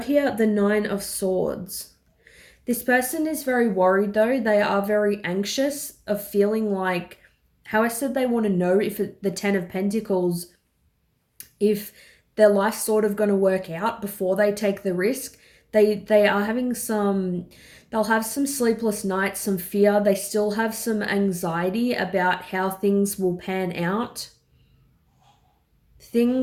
here the 9 of Swords. This person is very worried though. They are very anxious of feeling like, how I said they want to know if the 10 of Pentacles, if their life's sort of going to work out before they take the risk. They are having they'll have some sleepless nights, some fear. They still have some anxiety about how things will pan out.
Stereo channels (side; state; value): both; identical; correlation 1.00